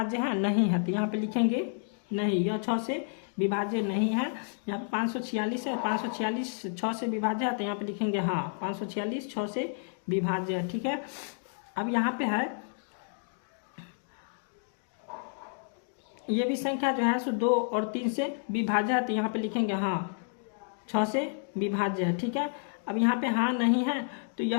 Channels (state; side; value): silent; right; digital silence